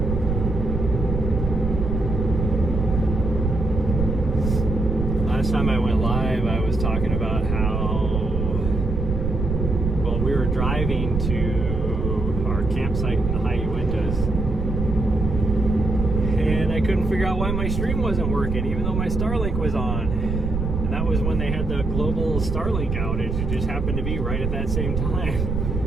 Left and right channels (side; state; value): right; noise; rumble, 2 dB below the sound